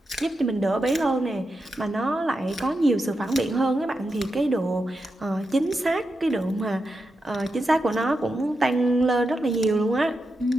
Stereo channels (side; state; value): both; normal; correlation 0.88